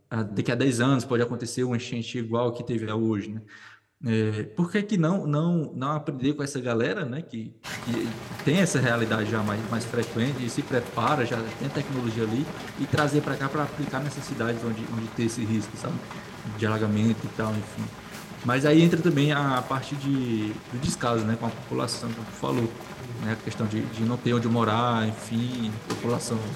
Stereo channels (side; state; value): both; identical; correlation 1.00